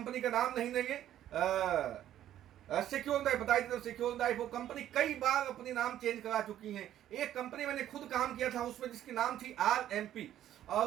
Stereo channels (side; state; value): left; quieter; 11.9 dB